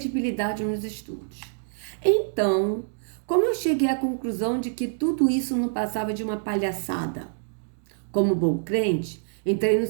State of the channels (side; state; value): left; silent; digital silence